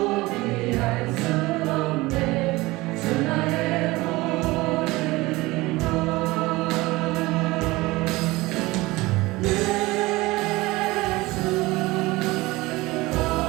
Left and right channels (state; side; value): quieter; left; 20.8 dB